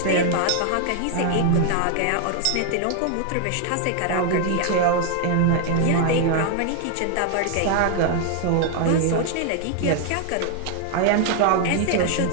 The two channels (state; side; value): different; both; correlation 0.00